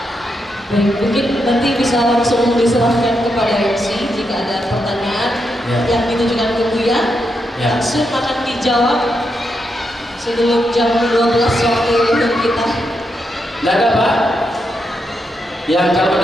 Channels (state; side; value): normal; both; correlation 0.83